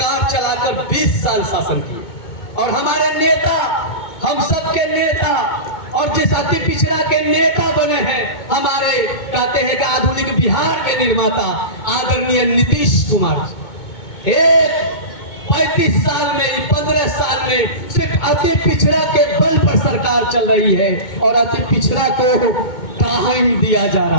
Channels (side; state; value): right; late; 2.2 ms